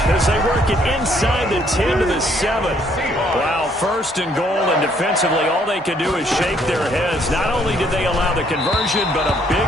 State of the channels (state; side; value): normal; both; correlation 0.67